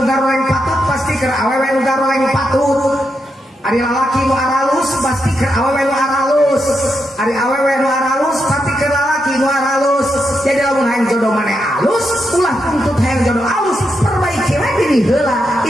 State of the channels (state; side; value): normal; both; correlation 0.84